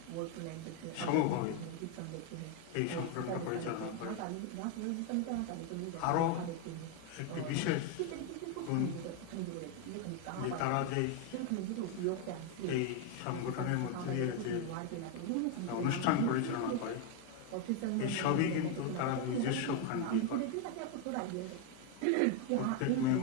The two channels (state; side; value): different; both; correlation 0.01